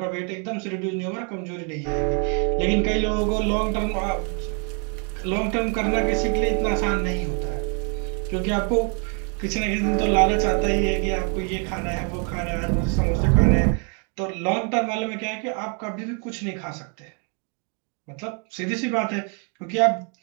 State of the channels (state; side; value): quieter; left; 38.1 dB